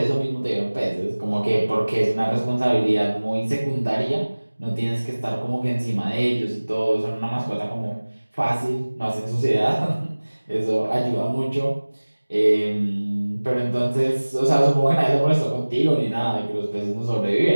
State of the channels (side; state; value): both; inverted; correlation -1.00